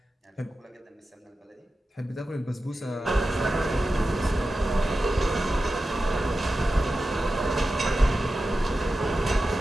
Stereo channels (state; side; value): normal; both; correlation 0.92